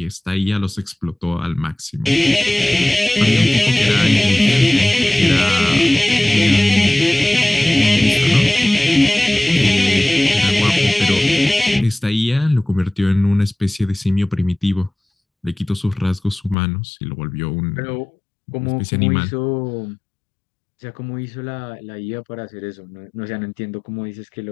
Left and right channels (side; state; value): right; drops out; at 16.6 s